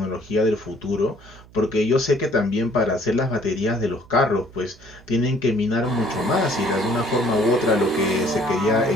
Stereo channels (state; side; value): noise; right; hum, 23 dB below the sound